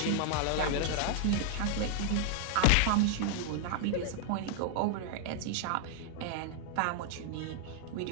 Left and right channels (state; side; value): different; both; correlation 0.00